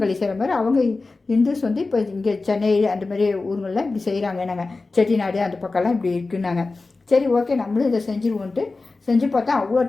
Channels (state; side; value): quieter; right; 3.6 dB